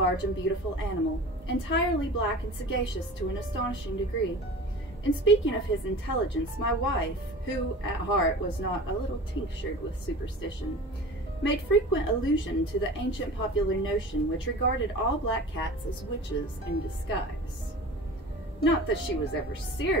and beautiful animal, entirely black and sagacious to an astonishing degree. In speaking of his intelligence, my wife, who at heart was not a little tinctured with superstition, made frequent allusion to the ancient popular notion which regarded all black cats as witches in disguise. Not that she was ever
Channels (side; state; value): both; normal; correlation 0.37